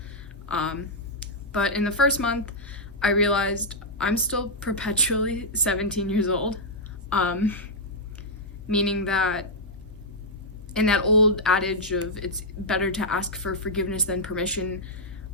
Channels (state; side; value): normal; both; correlation -0.08